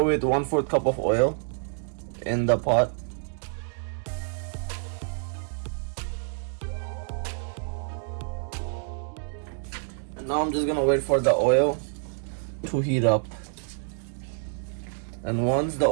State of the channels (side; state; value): left; silent; digital silence